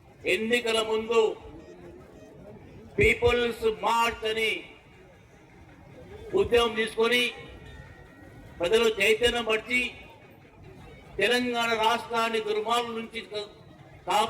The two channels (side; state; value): both; identical; correlation 1.00